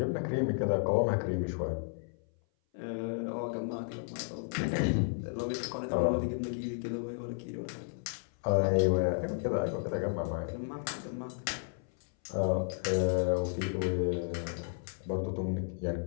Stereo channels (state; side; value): silent; right; 56 dB below the other